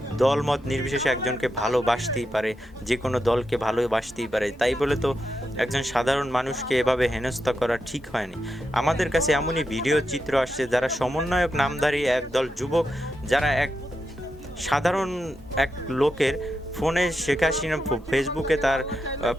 দল মত নির্বিশেষে একজনকে ভালোবাসতেই পারে, যে কোনো দলকে ভালোবাসতেই পারে। তাই বলে তো একজন সাধারণ মানুষকে এভাবে হেনস্থা করা ঠিক হয়নি। আমাদের কাছে এমনই ভিডিও চিত্র আসছে যারা সমন্বয়ক নামধারী একদল যুবক, যারা এক সাধারণ এক লোকের ফোনে শেখ হাসিনা ফেসবুকে তার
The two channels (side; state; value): both; normal; correlation 0.86